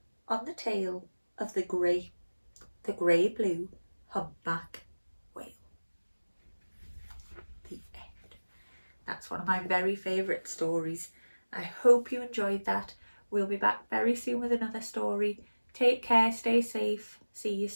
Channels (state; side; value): inverted; both; correlation -1.00